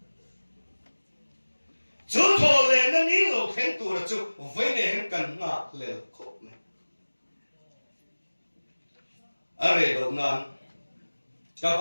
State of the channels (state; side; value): inverted; both; correlation -1.00